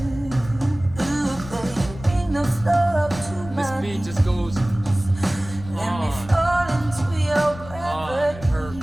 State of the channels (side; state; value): left; noise; rumble, 15 dB below the sound